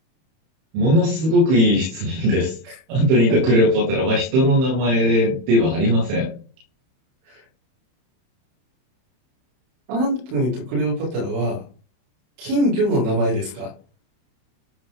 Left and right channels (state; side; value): late; left; 31 ms